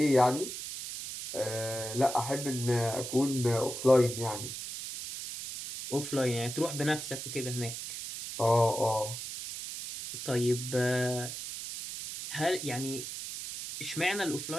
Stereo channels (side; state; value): right; noise; hiss, 7 dB below the sound